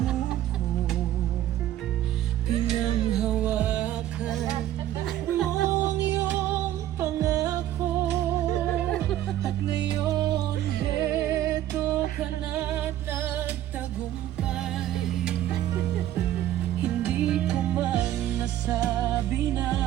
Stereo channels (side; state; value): left; quieter; 12.8 dB